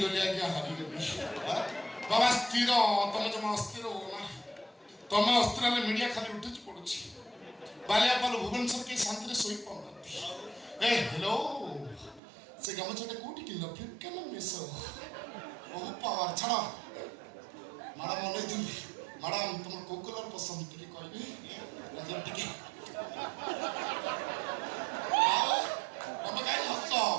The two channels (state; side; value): drops out; left; at 12.2 s